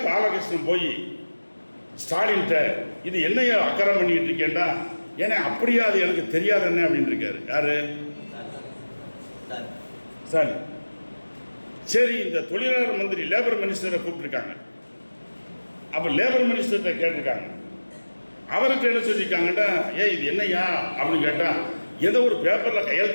பாலகிருஷ்ணன் போய் ஸ்டாலின்கிட்ட இது என்னையா அக்கறை பண்ணிக்கிட்டு இருக்கேன்டா, ஏன்னா அப்படியா அது எனக்கு தெரியாது என்ன அப்படின்னு இருக்காரு. யாரு? ஸ்டாலின். சரி, இந்த தொழிலாளர் மந்திரி லேபர் மினிஸ்டரை கூப்பிட்டுருக்காங்க. அப்போ லேபர் மினிஸ்டர்கிட்ட கேட்டிருக்காங்க. அவருக்கு என்ன சொல்லியிருக்காங்கட்டா, இது என்னையா அப்படின்னு கேட்டால், ஏதோ ஒரு பேப்பரில்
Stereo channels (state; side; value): inverted; both; correlation -1.00